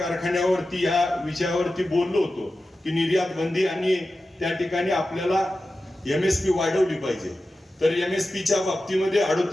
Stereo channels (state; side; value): normal; both; correlation 0.93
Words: या विषयावरती बोललो होतो की निर्यात बंदी आणि त्या ठिकाणी आपल्याला MSP वाढवली पाहिजे. तर MSPच्या बाबतीमध्ये